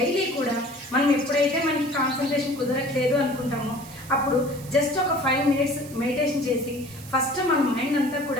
కూడా మనం ఎప్పుడైతే మనకి కాన్సన్ట్రేషన్ కుదరట్లేదు అనుకుంటామో అప్పుడు జస్ట్ ఒక 5 minutes మెడిటేషన్ చేసి ఫస్ట్ మన మైండ్ అంతా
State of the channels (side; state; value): right; noise; hiss, 18 dB below the sound